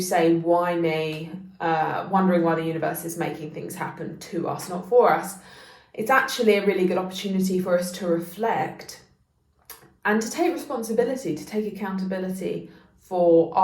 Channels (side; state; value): both; identical; correlation 1.00